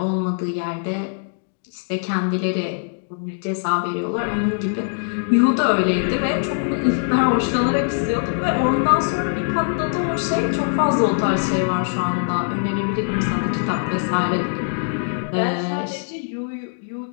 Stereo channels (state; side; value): silent; right; digital silence